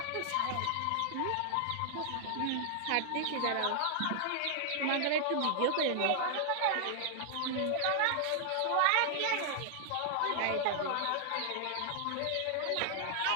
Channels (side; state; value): both; different; correlation 0.00